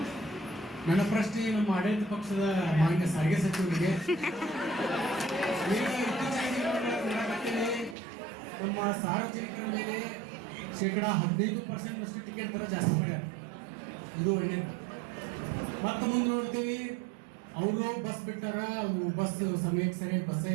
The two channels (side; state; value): left; drops out; at 8.0 s